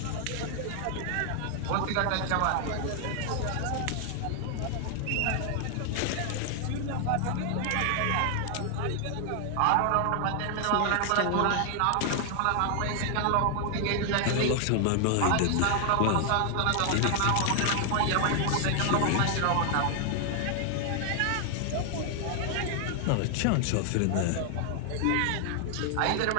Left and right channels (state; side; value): different; both; correlation 0.00